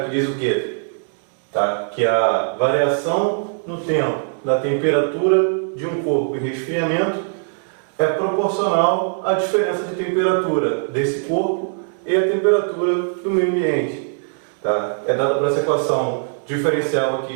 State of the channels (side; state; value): left; silent; digital silence